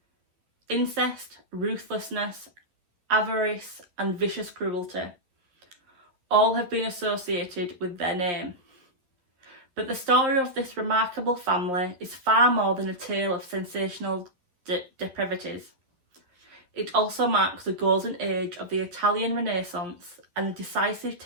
incest, ruthlessness, avarice and vicious cruelty. All have been associated with their name. But the story of this remarkable family is far more than a tale of sensational depravities. It also marks the golden age of the Italian Renaissance and a decisive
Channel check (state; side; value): late; left; 11 ms